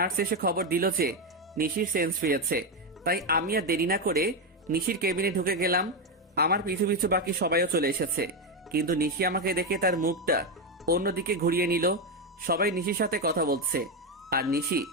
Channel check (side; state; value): both; normal; correlation 0.08